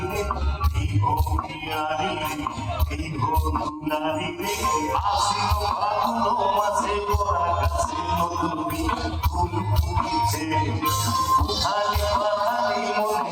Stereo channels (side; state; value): both; identical; correlation 1.00